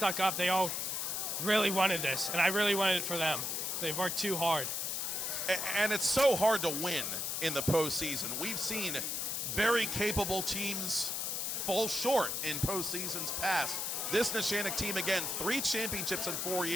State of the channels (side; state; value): left; noise; hiss, 1 dB below the sound